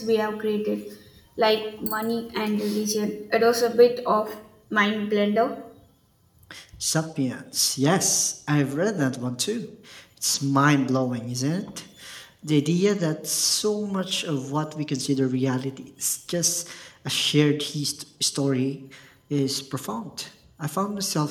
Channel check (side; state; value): both; identical; correlation 1.00